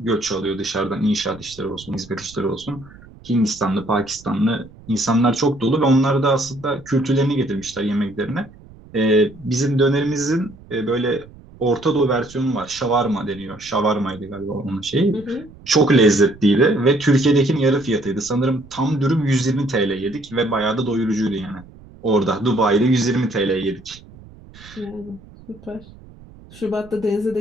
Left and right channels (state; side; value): noise; right; rumble, 21 dB below the sound